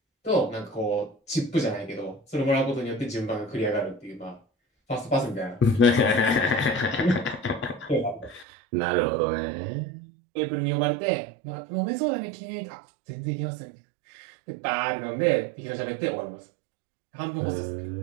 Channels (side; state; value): left; drops out; at 8.5 s